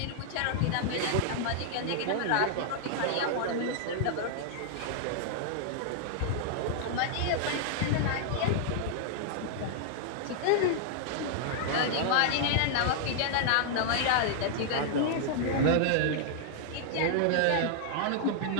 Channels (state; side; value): different; both; correlation -0.01